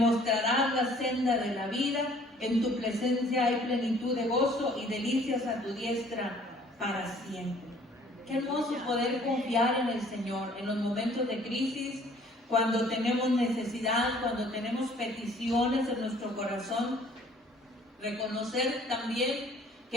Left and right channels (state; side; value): normal; both; correlation 0.56